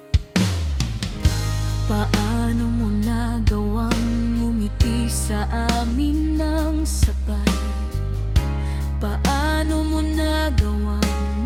Paano mo nagawang ngumiti sa amin ng sabay? Paano mo nagawang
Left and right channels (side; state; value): both; identical; correlation 1.00